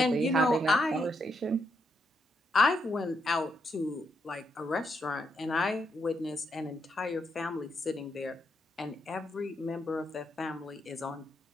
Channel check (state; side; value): normal; both; correlation 0.79